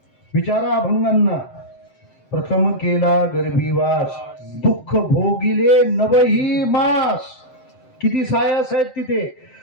विचारा अभंगांना. प्रथम केला गर्भीवास, दुःख भोगिले नवही मास. किती सायास आहेत तिथे.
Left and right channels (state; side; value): late; right; 7.7 ms